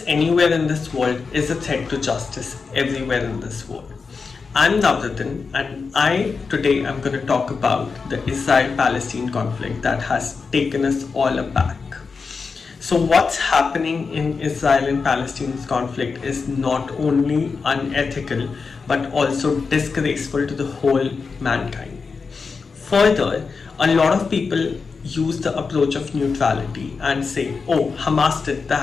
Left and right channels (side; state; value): right; quieter; 4.9 dB